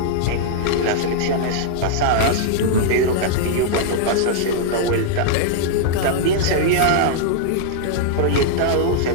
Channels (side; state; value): both; different; correlation -0.01